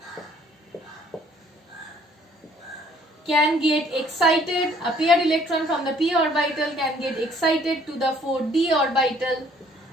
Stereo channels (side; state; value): both; normal; correlation 0.60